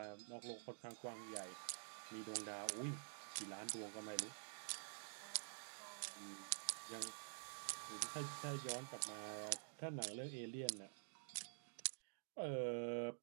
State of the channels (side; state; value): left; silent; digital silence